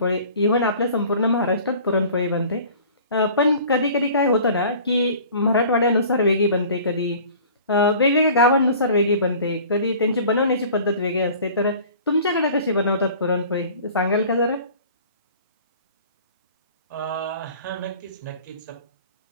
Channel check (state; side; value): inverted; both; correlation -0.46